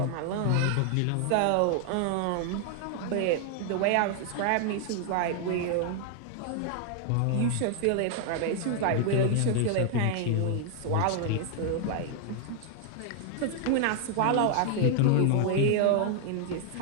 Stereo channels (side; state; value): both; different; correlation 0.00